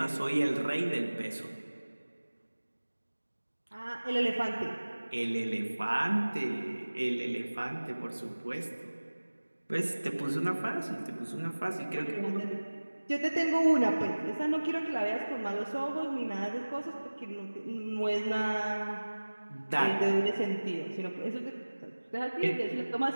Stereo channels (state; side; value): inverted; both; correlation -1.00